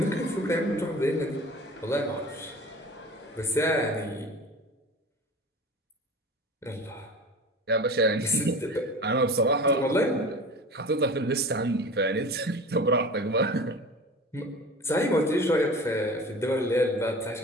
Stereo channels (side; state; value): both; normal; correlation 0.37